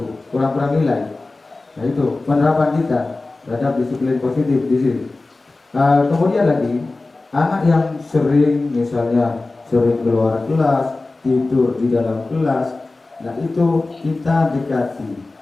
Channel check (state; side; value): quieter; right; 3.3 dB